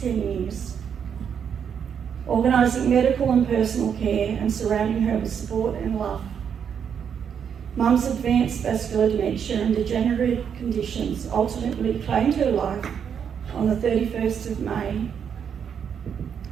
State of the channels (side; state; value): left; quieter; 7.6 dB